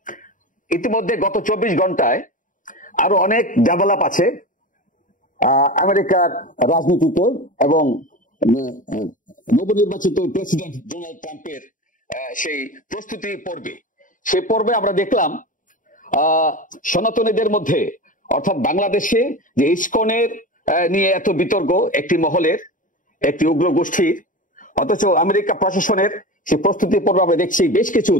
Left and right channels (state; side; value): late; right; 0.38 ms